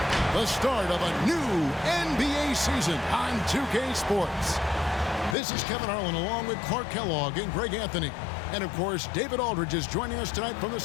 The start of a new NBA season on 2K Sports. This is Kevin Harlan along with Clark Kellogg and Greg Anthony. And, of course, David Aldridge is joining us tonight from the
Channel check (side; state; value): right; drops out; at 5.4 s